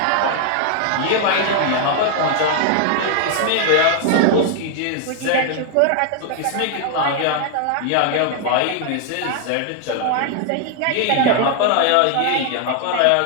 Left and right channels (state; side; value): different; both; correlation 0.00